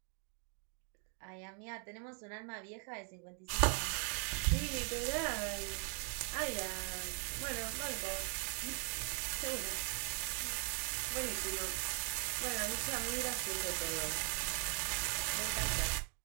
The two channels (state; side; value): quieter; left; 38.3 dB